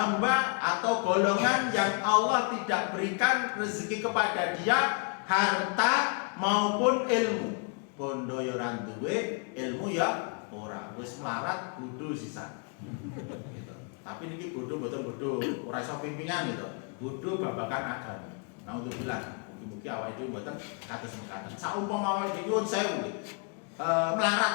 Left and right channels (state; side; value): quieter; right; 38.4 dB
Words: atau golongan yang Allah tidak berikan rezeki kepada dia harta maupun ilmu. Bondo ya ora duwe, ilmu ya ora. Wis melarat bodho sisan. Gitu. Tapi niki bodho mboten bodho, ora iso pimpingan gitu. Bodho babagan agama. Nah untuk bilang, mugi-mugi awake dhewe mboten kados mekaten. Saumpama awake dhewe nyuwun sewu